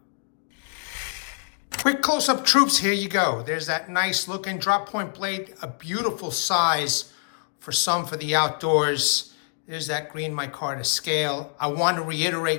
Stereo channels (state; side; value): silent; right; digital silence